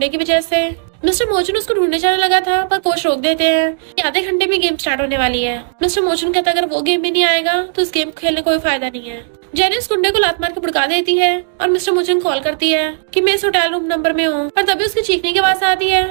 की वजह से। मिस्टर मोचुन उसको ढूंढने जाने लगा था पर कोच रोक देते हैं कि आधे घंटे में गेम स्टार्ट होने वाली है। मिस्टर मोचुन कहता है, अगर वो गेम में नहीं आएगा तो इस गेम खेलने का कोई फायदा नहीं है। जेनी उस गुंडे को लात मार के भड़का देती है और मिस्टर मोचुन कॉल करती है कि मैं इस होटल रूम नंबर में हूँ, पर तभी उसकी चीखने की आवाज आती है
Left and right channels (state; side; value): silent; left; digital silence